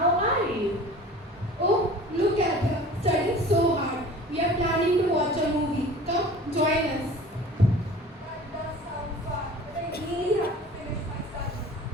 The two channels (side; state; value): both; normal; correlation 0.43